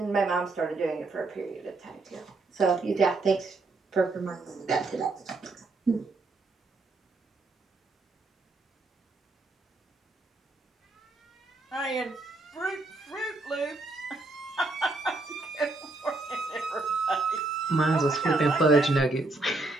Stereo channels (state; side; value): quieter; left; 3.2 dB